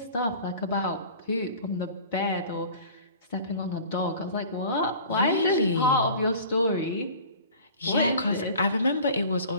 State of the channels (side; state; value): both; inverted; correlation -0.43